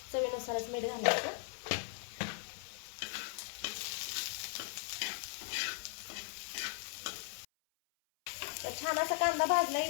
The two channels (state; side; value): silent; right; 52 dB below the other